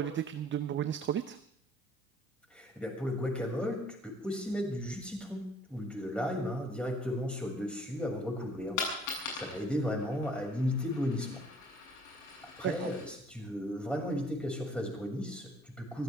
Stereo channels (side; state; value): both; normal; correlation 0.58